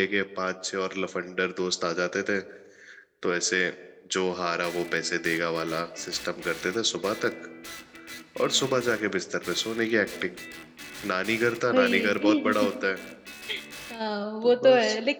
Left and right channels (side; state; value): both; identical; correlation 1.00